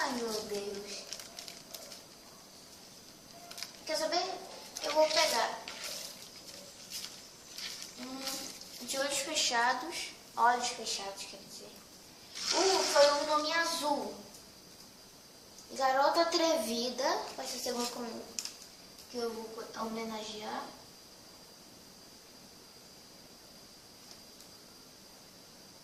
meu Deus. Quer saber? Eu vou pegar de olhos fechados, quer dizer. Foi um nome azul. Garota Atrevida, vai ser o segundo que eu vou homenagear.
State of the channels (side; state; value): both; identical; correlation 1.00